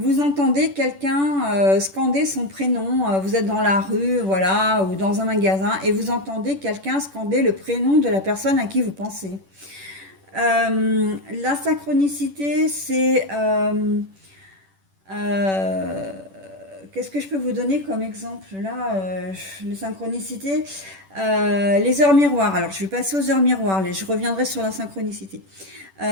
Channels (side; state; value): left; late; 10 ms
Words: entendez quelqu'un scander son prénom, vous êtes dans la rue, voilà, ou dans un magasin, et vous entendez quelqu'un scander le prénom de la personne à qui vous pensez. La synchronicité, c'est... qu'est-ce que je peux vous donner comme exemple là, les synchronicités, les heures miroirs. Alors, je vais passer aux heures miroirs, je reviendrai sur la synchronicité.